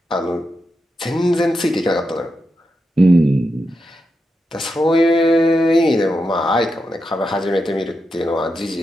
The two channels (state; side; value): normal; both; correlation 0.87